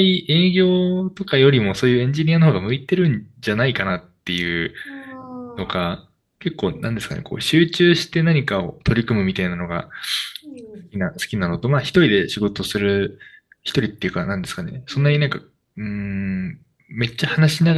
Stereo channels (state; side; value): identical; both; correlation 1.00